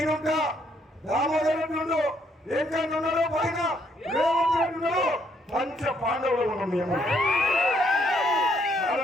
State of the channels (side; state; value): both; normal; correlation 0.71